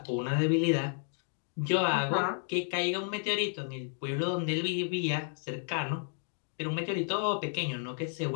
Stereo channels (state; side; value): silent; right; 56 dB below the other